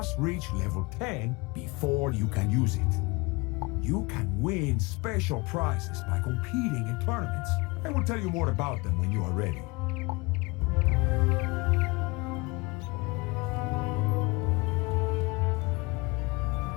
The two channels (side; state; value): right; quieter; 25.6 dB